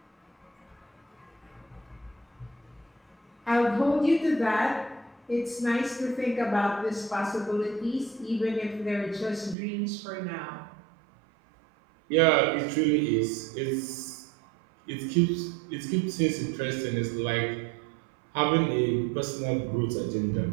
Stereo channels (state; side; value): drops out; left; at 9.6 s